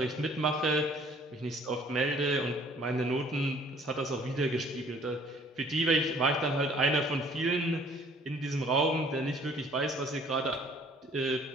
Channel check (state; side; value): normal; both; correlation 0.57